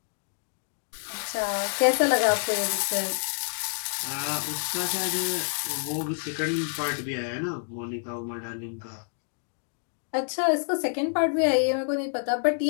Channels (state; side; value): silent; right; 59 dB below the other